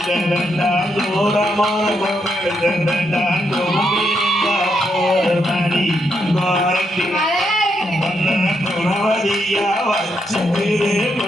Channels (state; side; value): normal; both; correlation 0.79